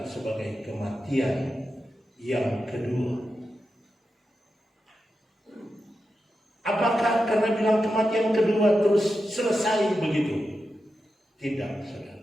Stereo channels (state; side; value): normal; both; correlation 0.89